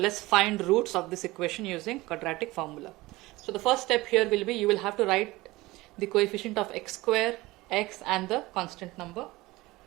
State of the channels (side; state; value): left; quieter; 20.0 dB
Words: find roots of this equation using quadratic formula. So the first step here will be, you will have to write the coefficient of x square, x and the constant number.